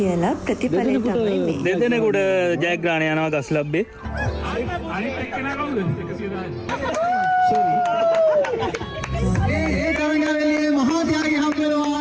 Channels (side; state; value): both; identical; correlation 1.00